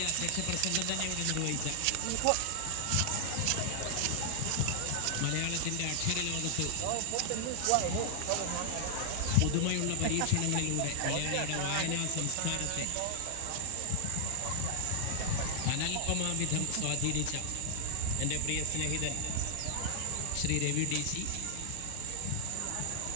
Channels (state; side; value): different; both; correlation 0.00